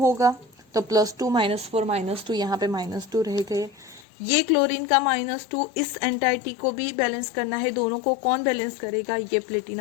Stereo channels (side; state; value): right; drops out; at 4.0 s